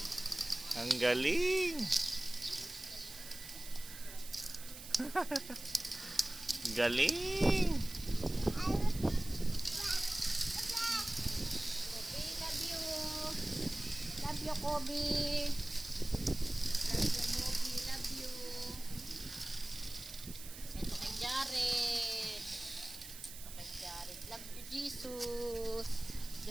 Ang galing. Galing. Love you. Love you, Kobe. Love you, Kobe. Love you. Ito kay Jared. Ito kay Jared. Love you, Jesus.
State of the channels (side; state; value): right; noise; hiss, 13 dB below the sound